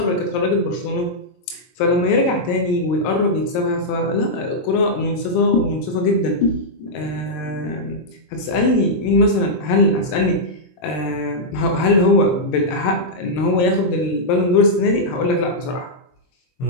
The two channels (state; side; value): late; right; 22 ms